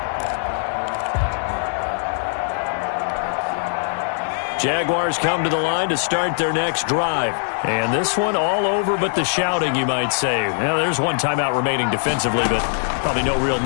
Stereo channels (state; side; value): silent; right; 55 dB below the other